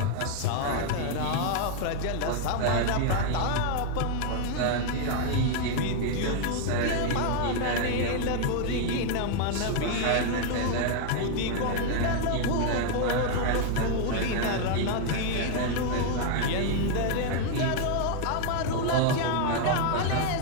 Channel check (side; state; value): both; different; correlation 0.00